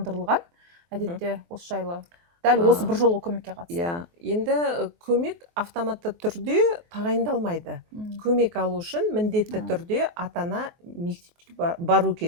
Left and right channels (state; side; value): late; left; 23 ms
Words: Әдетте осы жайлы дәл осы бір жолғы көмекке қатысты. Енді көмек автоматты түрде тағайындалмайды. Көмек алу үшін міндетті түрде ата-ана мектепке бару